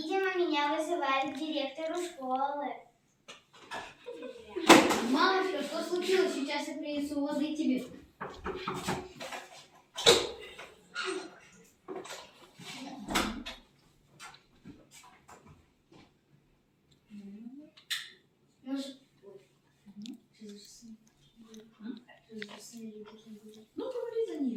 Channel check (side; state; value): both; identical; correlation 1.00